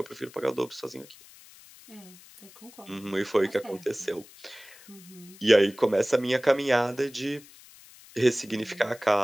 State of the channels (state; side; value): noise; left; hiss, 22 dB below the sound